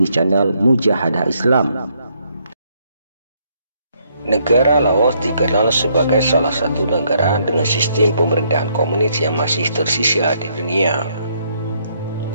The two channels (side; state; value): both; inverted; correlation -0.72